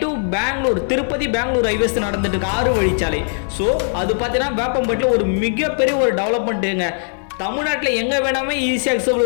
டு பெங்களூர், திருப்பதி பெங்களூர் ஹைவேஸ் நடந்துட்டு இருக்கு 6 வழிச்சாலை. ஸோ அது பார்த்தீங்கன்னா வேப்பம்பட்டில் ஒரு மிகப்பெரிய ஒரு டெவலப்மெண்ட்டுங்க. தமிழ்நாட்டில் எங்கே வேணாமே ஈஸியாக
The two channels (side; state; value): right; silent; digital silence